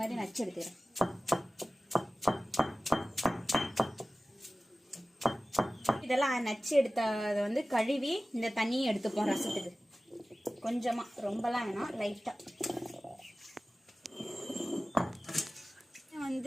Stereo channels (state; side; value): normal; both; correlation 0.96